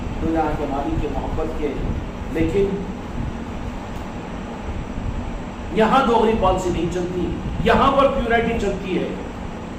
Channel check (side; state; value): both; identical; correlation 1.00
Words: دنیا کے مالک کے محبت کے, لیکن یہاں دوغلی پالیسی نہیں چلتی. یہاں پر پیورٹی چلتی ہے,